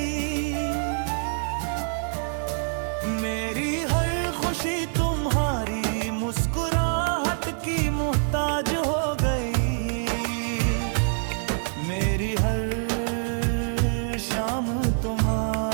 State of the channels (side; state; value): left; silent; 56 dB below the other